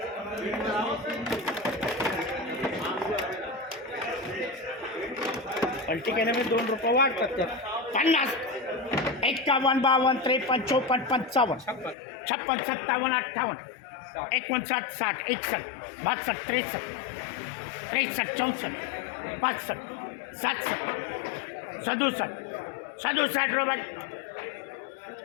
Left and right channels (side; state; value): right; drops out; at 12.0 s